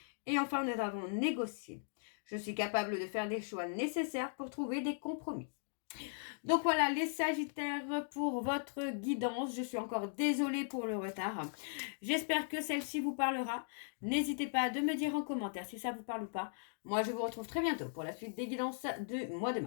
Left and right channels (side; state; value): right; silent; digital silence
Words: Et enfin, nous avons négocié. Je suis capable de faire des choix nécessaires pour trouver des compromis. Donc voilà les Sagittaires pour votre guidance. Je suis encore désolée pour le retard. J'espère que celle-ci vous parlera. N'hésitez pas à me dire en commentaire si ça vous parle ou pas. Moi je vous retrouve très bientôt pour la suite des guidances du mois de